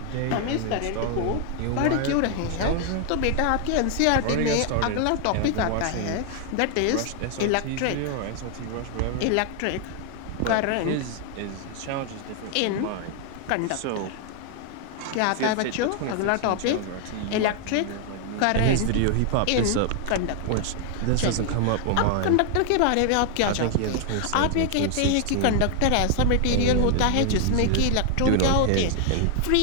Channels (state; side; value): different; both; correlation 0.00